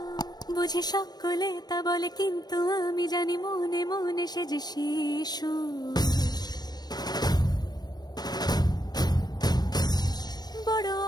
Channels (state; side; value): late; right; 0.19 ms